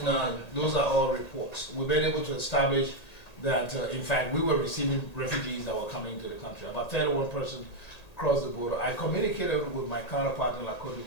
No, those are all reports. We've been able to establish that, in fact, we were receiving refugees that were coming into the country. About 31 persons crossed the border. I communicated with my counterpart in La Côte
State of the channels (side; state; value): right; late; 1.9 ms